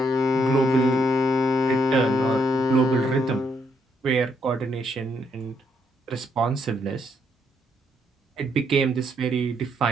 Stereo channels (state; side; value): normal; both; correlation 0.74